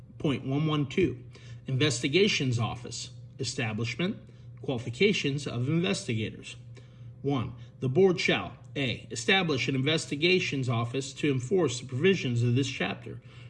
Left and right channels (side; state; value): both; identical; correlation 1.00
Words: 624.112, Investigations Office, Establishment, Qualifications of Investigators. 1. The board shall, A. Establish an investigations office to enforce the provisions of this chapter.